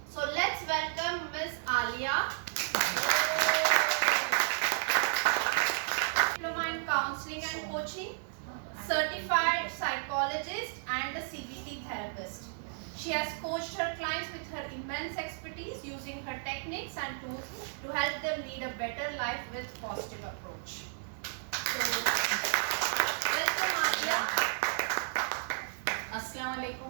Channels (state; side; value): silent; left; 56 dB below the other